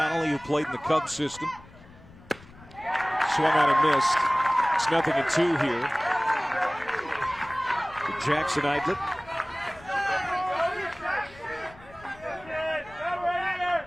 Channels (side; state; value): left; noise; rumble, 22 dB below the sound